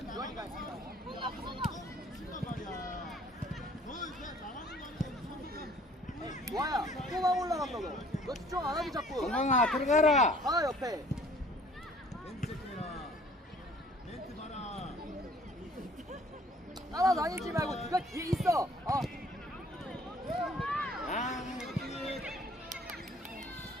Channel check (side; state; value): both; normal; correlation 0.55